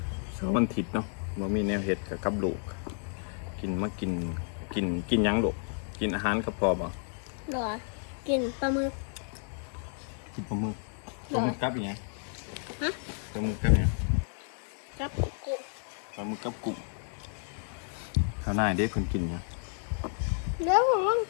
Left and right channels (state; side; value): silent; right; 55 dB below the other